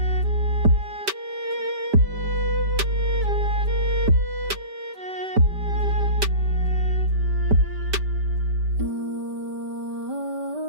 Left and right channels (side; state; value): left; late; 5.1 ms